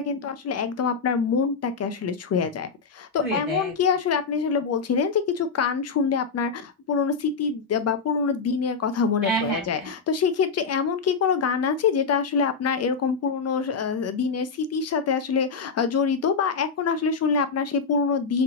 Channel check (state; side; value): quieter; right; 5.1 dB